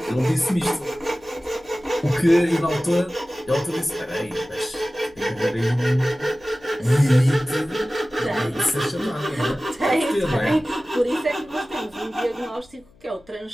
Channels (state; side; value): noise; left; hum, 29 dB below the sound